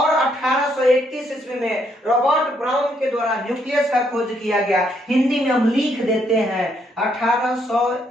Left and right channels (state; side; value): normal; both; correlation 0.73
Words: 1831 ईस्वी में रॉबर्ट ब्राउन के द्वारा न्यूक्लियस का खोज किया गया। हिंदी में हम लिख देते हैं